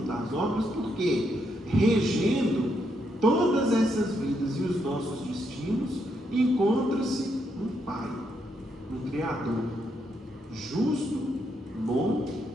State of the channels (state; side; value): normal; both; correlation 0.78